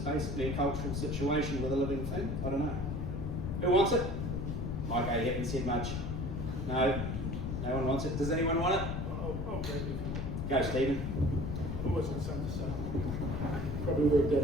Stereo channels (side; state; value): left; noise; rumble, 3 dB below the sound